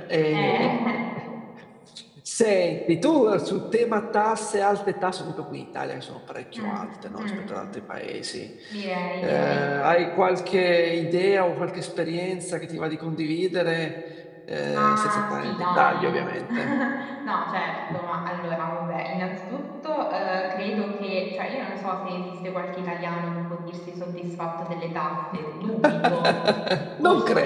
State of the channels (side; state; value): both; identical; correlation 1.00